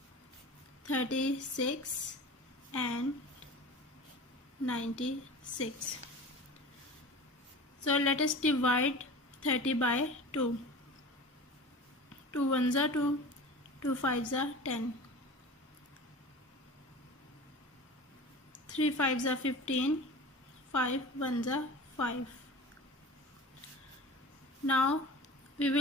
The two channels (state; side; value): normal; both; correlation 0.36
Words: 36 and 96. So let us divide 30 by 2. 2 1s are 2, 2 5s are 10, 3 5s are 15, 5 1s are 5. Now we